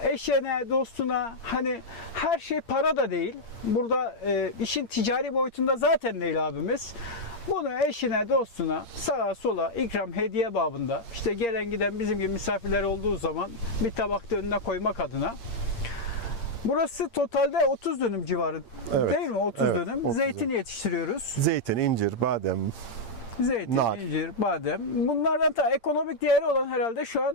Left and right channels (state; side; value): late; right; 8.7 ms